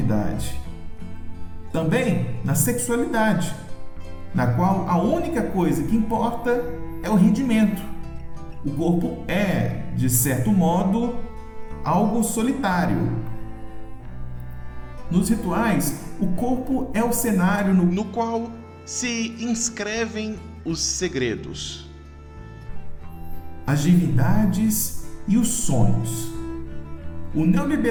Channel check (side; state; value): both; identical; correlation 1.00